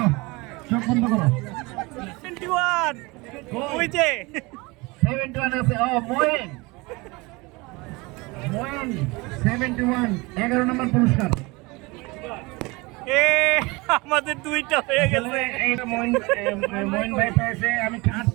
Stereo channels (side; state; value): left; quieter; 24.7 dB